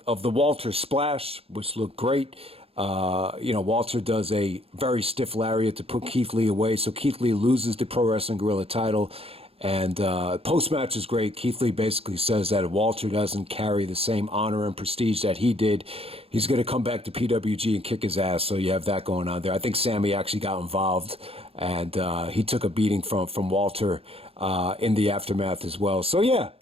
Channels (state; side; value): late; left; 0.28 ms